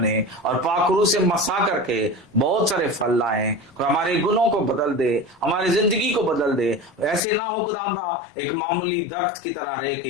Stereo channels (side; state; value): right; drops out; at 7.2 s